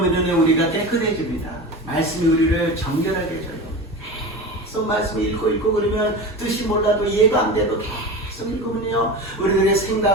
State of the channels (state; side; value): normal; both; correlation 0.28